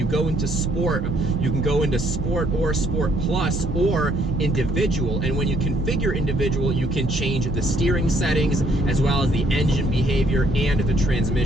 go into Sport, you can go into Sport or Sport Plus or Individual. And when you configure Individual, you can change the steering settings as well as the engine behavior and the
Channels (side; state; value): both; normal; correlation 0.67